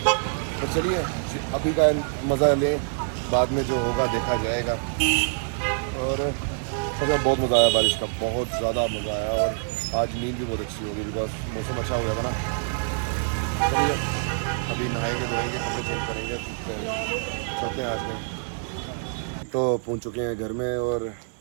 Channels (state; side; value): silent; left; 57 dB below the other